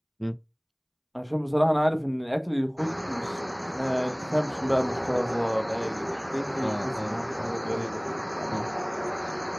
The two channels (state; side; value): identical; both; correlation 1.00